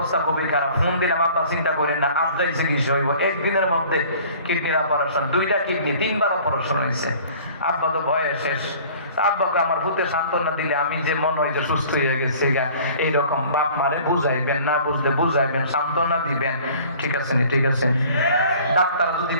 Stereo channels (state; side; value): inverted; both; correlation -0.49